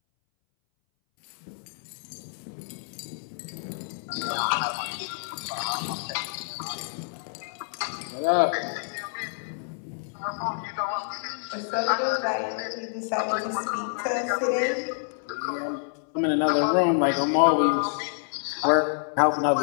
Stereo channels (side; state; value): right; silent; 60 dB below the other